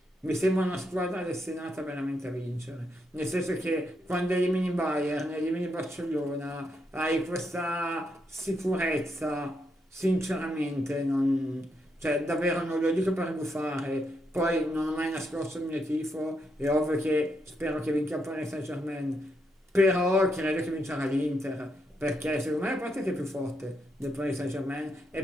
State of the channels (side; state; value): both; normal; correlation 0.80